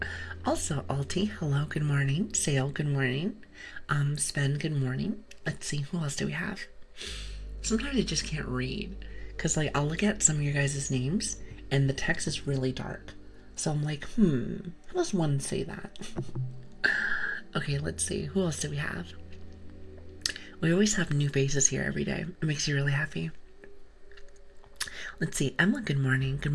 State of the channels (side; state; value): both; identical; correlation 1.00